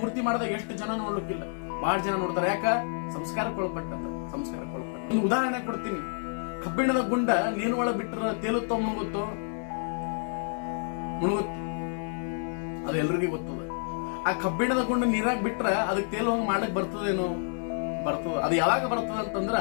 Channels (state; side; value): silent; right; digital silence